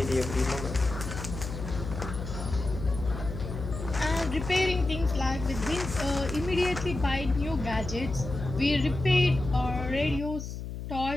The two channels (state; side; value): noise; left; hum, 7 dB below the sound